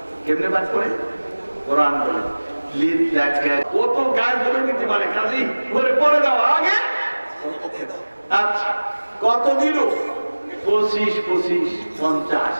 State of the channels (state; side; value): inverted; both; correlation -1.00